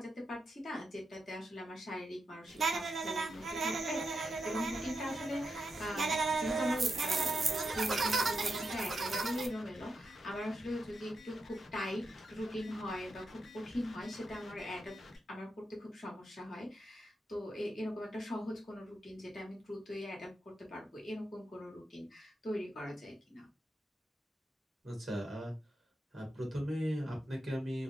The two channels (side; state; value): both; normal; correlation 0.85